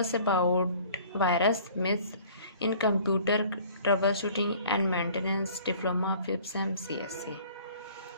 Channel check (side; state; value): both; inverted; correlation -0.51